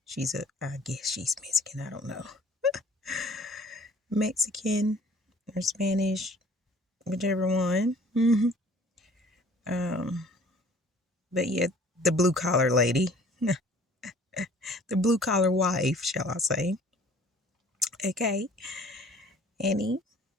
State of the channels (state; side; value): normal; both; correlation 0.52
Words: I guess she's Mexican. I don't know. Mexican or Spanish, whichever one. But yeah, the blue collar lady, the blue collar wife, shall I say? Okay, Annie.